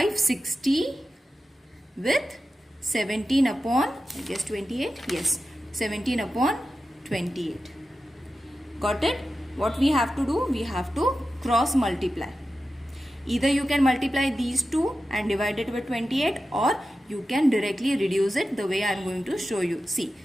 with 17 upon, I guess 28, yes, 17 upon 28. Got it? What we have to do? We have to cross multiply. Either you can multiply these two and divide it with 28, or you can directly reduce it the way I am going to show you. See,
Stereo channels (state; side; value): normal; both; correlation 0.92